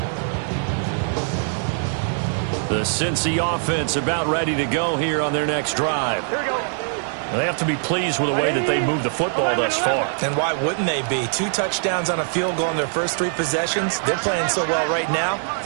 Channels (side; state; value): left; silent; 61 dB below the other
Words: The Cincy offense about ready to go here on their next drive. Here we go. They have to be pleased with the way that they moved the football thus far. And why wouldn't they be? 2 touchdowns on a field goal in their first 3 possessions. They're playing so well right now,